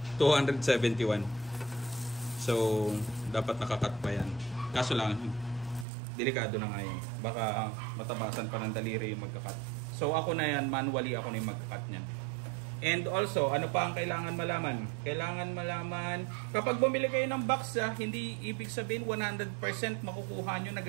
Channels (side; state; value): left; drops out; at 5.9 s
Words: 271. So, dapat nakakat pa yan. Kaso lang, delikado na nga yan. Baka matabasan pa ng daliri yung magkakat. So, ako na yan, manually ako na yung magkakat niyan. And also, ano pa ang kailangan malaman? Kailangan malaman, kapag bumili kayo ng box, hindi ibig sabihin 100% makukuha nyo na